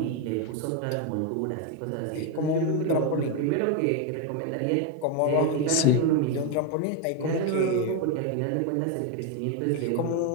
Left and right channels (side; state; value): both; different; correlation 0.02